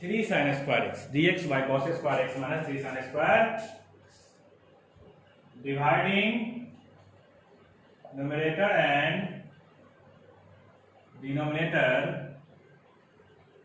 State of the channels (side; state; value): both; identical; correlation 1.00